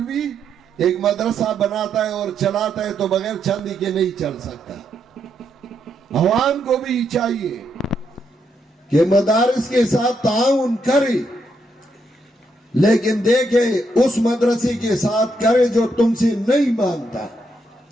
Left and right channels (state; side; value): normal; both; correlation 0.78